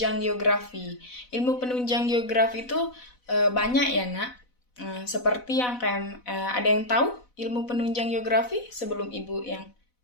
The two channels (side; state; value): right; late; 4.0 ms